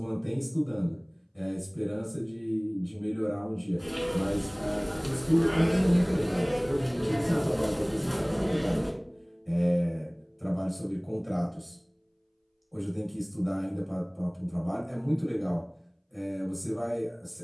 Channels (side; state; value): both; identical; correlation 1.00